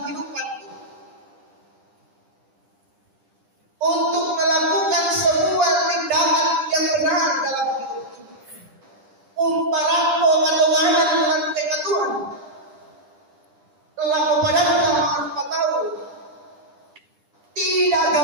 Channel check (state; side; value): late; left; 10 ms